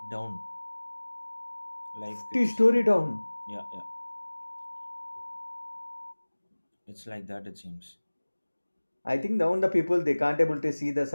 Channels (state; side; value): inverted; both; correlation -1.00